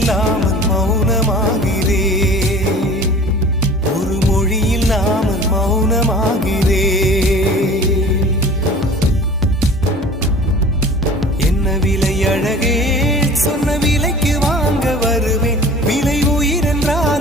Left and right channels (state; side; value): normal; both; correlation 0.43